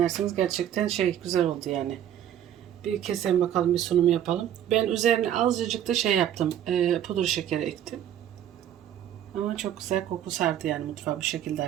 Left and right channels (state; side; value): quieter; left; 10.6 dB